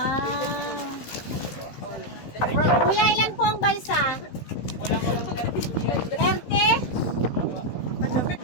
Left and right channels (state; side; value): late; right; 16 ms